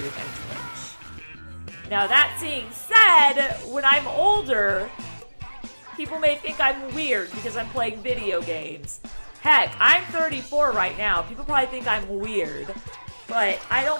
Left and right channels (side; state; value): both; inverted; correlation -1.00